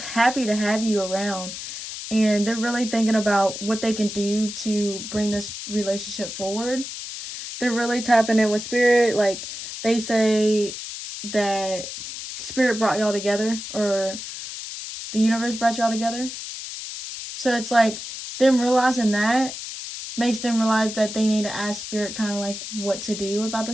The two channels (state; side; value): noise; left; hiss, 9 dB below the sound